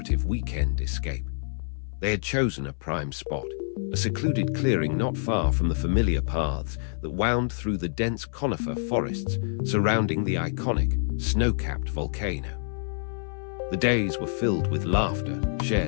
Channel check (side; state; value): right; silent; 60 dB below the other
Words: weekend escape. They had chosen a prime spot, a secluded clearing not far from the familiar paths that wound through the dense conifer forests surrounding the iconic, snow-capped volcano. The days were filled with laughter,